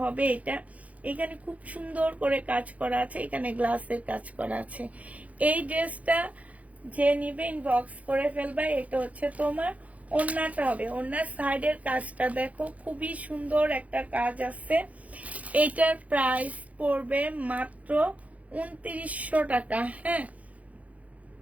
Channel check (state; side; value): late; left; 0.069 ms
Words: হবে এটা। এখানে খুব সুন্দর করে কাজ করা আছে, এখানে গ্লাসের কাজ করা আছে। এই ড্রেসটা যে নিবে ইনবক্স করে ফেলবা। এটা হচ্ছে তোমার ওড়নাটা হবে, ওড়নার সাইডের কাজটা দেখো খুবই সুন্দর একটা কাজ আছে। এটার প্রাইস পড়বে মাত্র 2900 টাকা। হ্যাঁ,